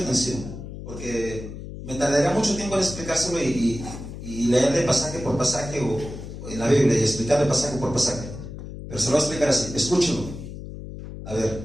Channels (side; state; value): left; noise; hum, 10 dB below the sound